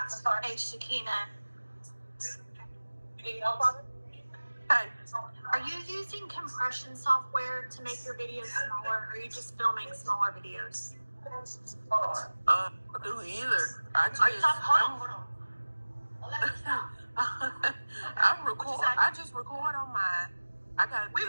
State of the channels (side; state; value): both; inverted; correlation -1.00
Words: Hey, Shakina, You need help on it? Hey, are you using compression software to make your videos smaller, or are you just filming smaller videos? Hold on. I don't do either. I just, Are you talking? Hold on. I record. I just record on mine. I got